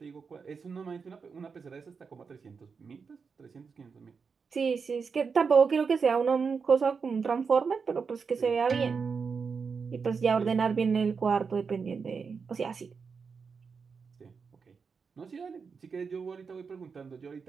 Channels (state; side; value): quieter; left; 5.5 dB